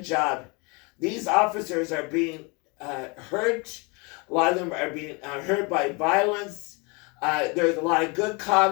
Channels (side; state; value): right; quieter; 30.0 dB